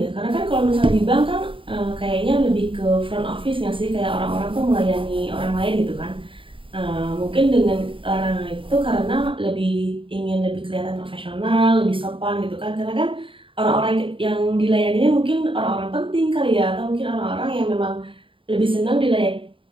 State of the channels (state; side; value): late; left; 0.25 ms